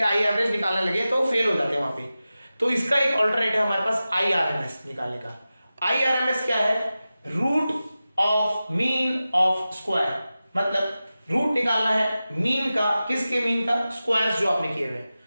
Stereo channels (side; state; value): both; inverted; correlation -0.94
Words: आई एवरेज निकालने लगे तो फेल हो जाते हैं वहां पे, तो इसका एक अल्टरनेट है हमारे पास आई आरएमएस निकालने का। आई आरएमएस क्या है, root of mean of square, मतलब रूट निकालना है मीन का, किसके मीन का, स्क्वायर्स जो आपने किए हुए हैं।